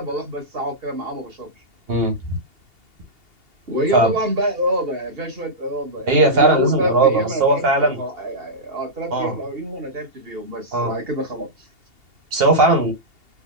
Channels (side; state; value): left; late; 2.8 ms